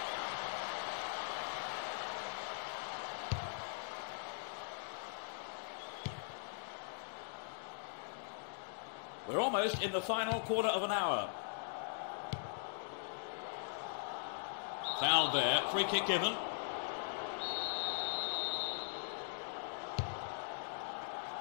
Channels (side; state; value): right; silent; digital silence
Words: We're almost in the final quarter of an hour. Foul there, free kick given.